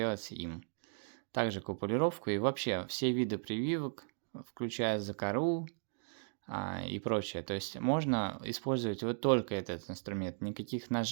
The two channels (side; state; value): left; silent; digital silence